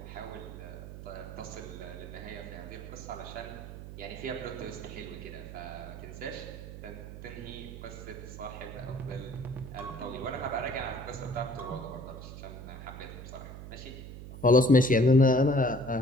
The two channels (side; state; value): right; noise; hum, 11 dB below the sound